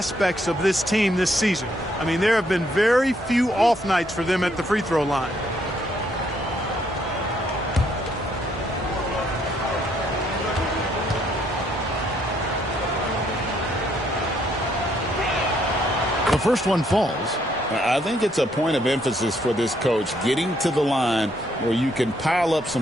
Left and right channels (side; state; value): both; normal; correlation 0.70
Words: of this team this season. I mean, there have been very few off nights for them at the free throw line. The first one falls. I think it's a point of emphasis for this coach, getting to the line where you can pile up